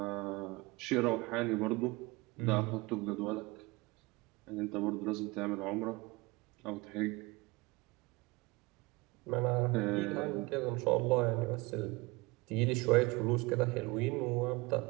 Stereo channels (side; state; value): left; quieter; 23.5 dB